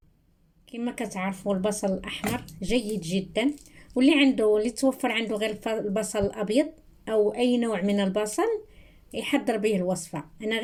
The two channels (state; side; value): identical; both; correlation 1.00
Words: كما كتعرفوا البصل الأحمر جيد جدا، واللي توفر عنده غير البصل الأبيض أو أي نوع من البصل يحضر به الوصفة. أنا